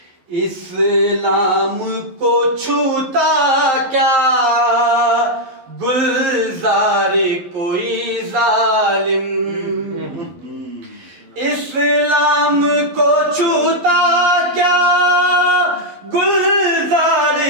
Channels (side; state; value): left; late; 11 ms